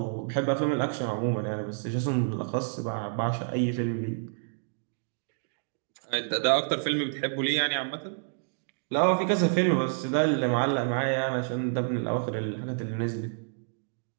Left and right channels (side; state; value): left; silent; digital silence